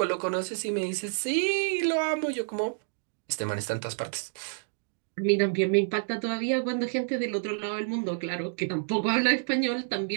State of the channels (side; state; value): left; silent; digital silence